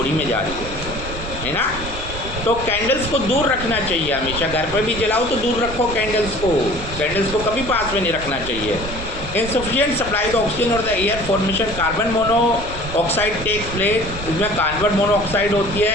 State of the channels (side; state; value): right; noise; rumble, 10 dB below the sound